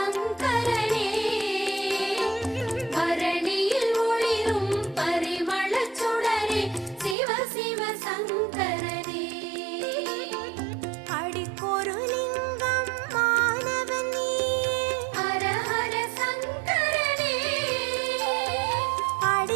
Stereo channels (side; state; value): left; drops out; at 7.2 s